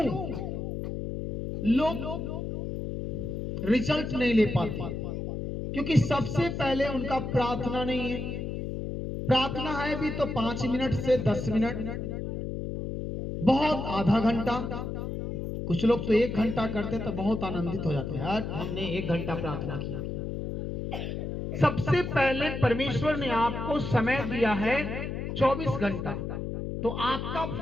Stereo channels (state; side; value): noise; left; hum, 4 dB below the sound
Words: लोग रिजल्ट नहीं ले पाते? क्योंकि सबसे पहले उनका प्रार्थना नहीं है। प्रार्थना है भी तो 5 मिनट से 10 मिनट, बहुत आधा घंटा, कुछ लोग तो 1 घंटा करते तो बहुत आनंदित हो जाते हैं, यार हमने 1 घंटा प्रार्थना किया। सबसे पहले परमेश्वर ने आपको समय दिया है 24 घंटा, तो आपका